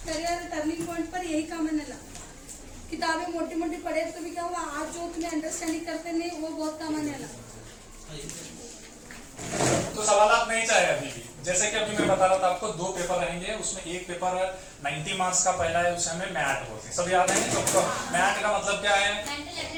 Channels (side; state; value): both; identical; correlation 1.00